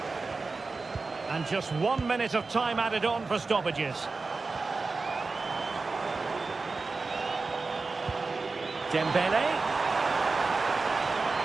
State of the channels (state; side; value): quieter; left; 4.0 dB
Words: And just 1 minute of time added on for stoppages. Dembele.